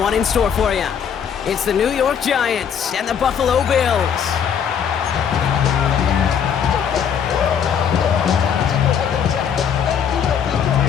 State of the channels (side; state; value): right; quieter; 7.8 dB